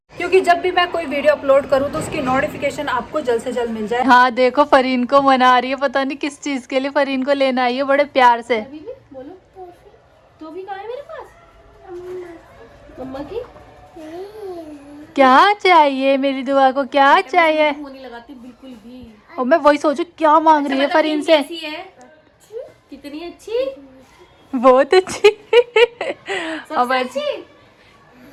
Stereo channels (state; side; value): identical; both; correlation 1.00